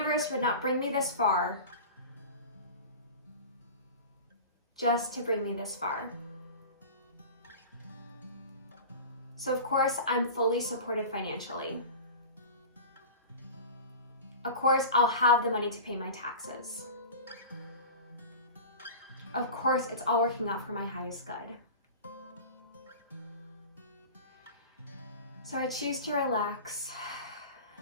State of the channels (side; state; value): both; inverted; correlation -0.34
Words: would not bring me this far just to bring me this far. So of course, I'm fully supported financially. Of course, I'll have the money to pay my taxes. Of course, it's all working out for my highest good. So I choose to relax.